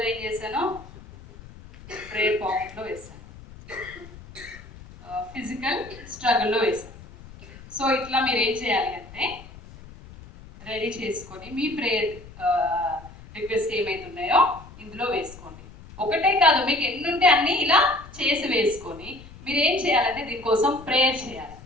ఏం చేశాను, ప్రేయర్ పాకెట్లో వేసాను, ఫిజికల్ స్ట్రగుల్లో వేసాను. సో ఇట్లా మీరు ఏం చేయాలి అంటే రెడీ చేసుకొని మీ ప్రేయర్ రిక్వెస్ట్ ఏమైతున్నాయో ఇందులో వేసుకోండి. ఒకటే కాదు, మీకు ఎన్ని ఉంటే అన్ని ఇలా చేసి వేసుకొని మీరు ఏం చేయాలంటే దీనికోసం ప్రేయర్ చేయాలి.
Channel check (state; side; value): noise; left; rumble, 18 dB below the sound